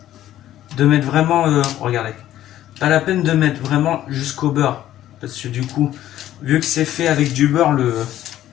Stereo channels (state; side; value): quieter; right; 12.9 dB